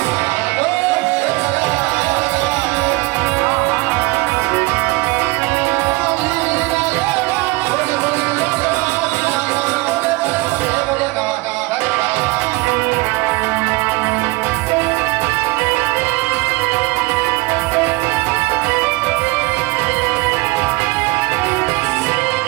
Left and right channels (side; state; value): left; quieter; 23.6 dB